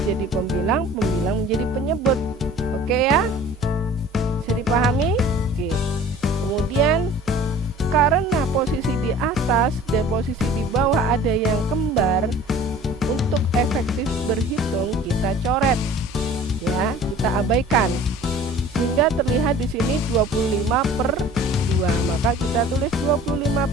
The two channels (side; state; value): both; normal; correlation 0.46